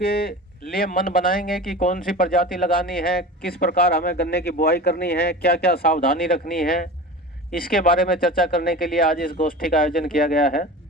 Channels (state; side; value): normal; both; correlation 0.33